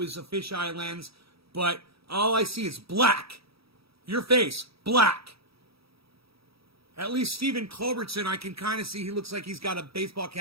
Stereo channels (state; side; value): late; left; 0.76 ms